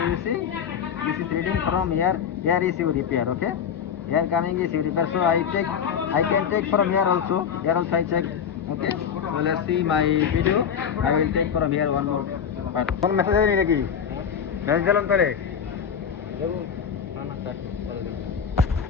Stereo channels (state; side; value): quieter; right; 7.6 dB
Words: you see, this is reading from here. Here is your repair. Okay. Here coming is your repair. So I can take from here also. Here also I check. Okay. So let's see my video. I will take from here one more part. One message है नहीं Let's jalan pare.